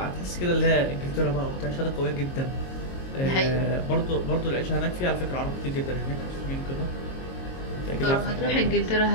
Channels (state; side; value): late; right; 22 ms